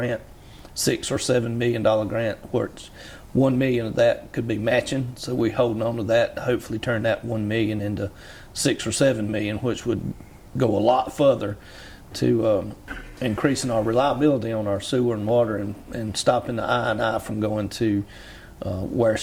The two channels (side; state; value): both; identical; correlation 1.00